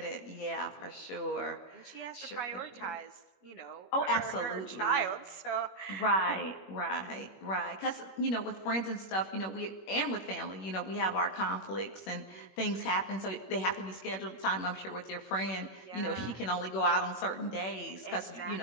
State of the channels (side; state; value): right; late; 21 ms